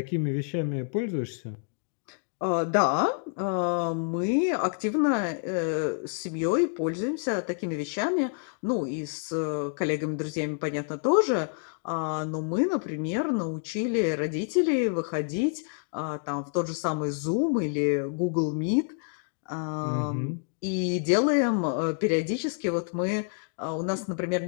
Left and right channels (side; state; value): right; silent; 59 dB below the other